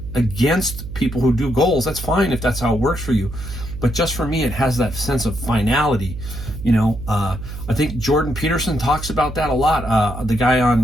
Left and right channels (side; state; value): right; noise; hum, 9 dB below the sound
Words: against people who do goals. That's fine if that's how it works for you. But just for me, it has that sense of finality. You know, I think Jordan Peterson talks about that a lot. The guy on